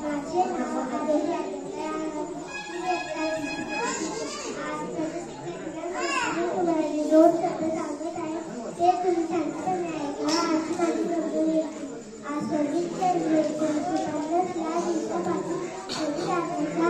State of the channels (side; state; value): both; identical; correlation 1.00